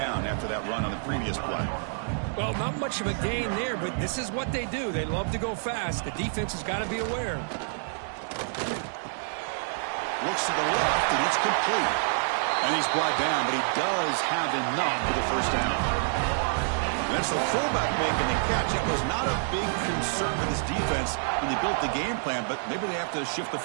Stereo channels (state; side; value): silent; left; digital silence